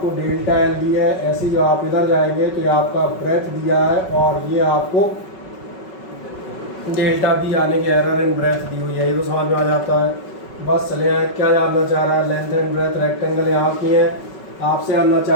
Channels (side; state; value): right; late; 5.3 ms